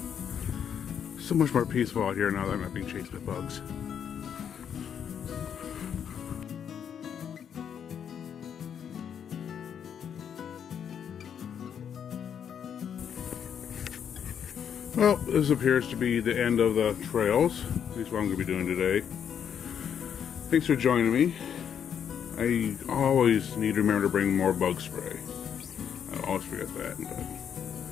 So much more peaceful out here now that I'm not being chased by bugs. Well, this appears to be the end of the trails. At least what I'm going to be doing today. Thanks for joining me. I always need to remember to bring more bug spray. I always forget that.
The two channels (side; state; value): right; quieter; 8.2 dB